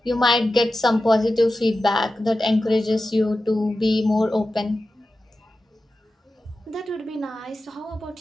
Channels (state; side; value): normal; both; correlation 0.93